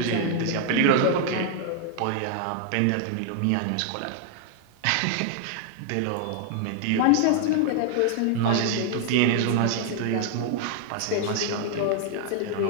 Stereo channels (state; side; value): different; both; correlation 0.00